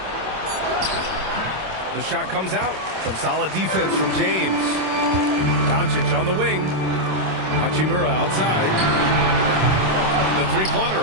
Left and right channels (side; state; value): left; late; 26 ms